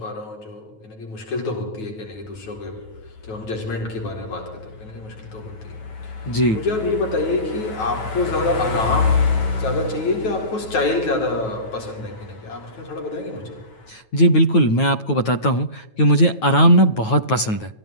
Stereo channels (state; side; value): late; right; 9.3 ms